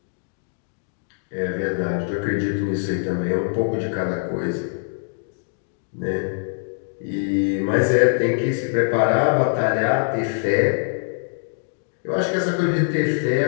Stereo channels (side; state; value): right; silent; digital silence